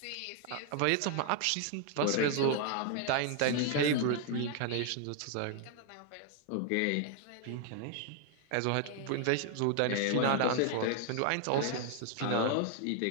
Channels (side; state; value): both; different; correlation 0.00